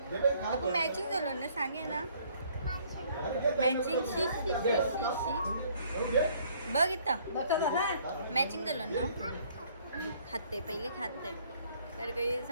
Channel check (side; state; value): both; inverted; correlation -0.61